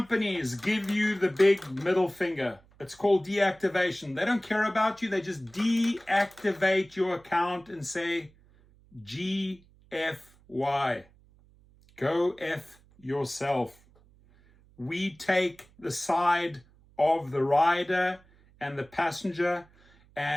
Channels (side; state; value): right; noise; hum, 29 dB below the sound